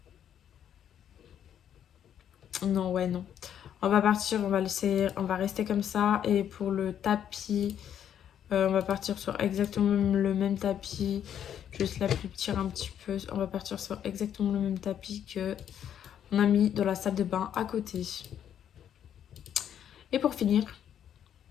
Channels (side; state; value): right; quieter; 9.6 dB